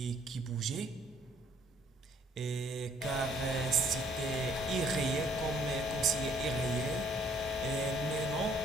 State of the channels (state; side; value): normal; both; correlation 0.62